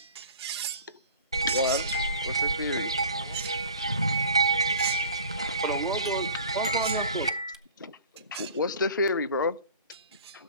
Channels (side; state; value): both; inverted; correlation -0.44